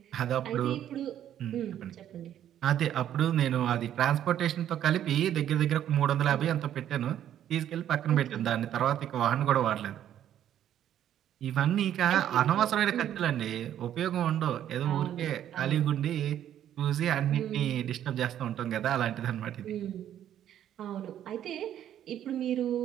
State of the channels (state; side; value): quieter; left; 10.8 dB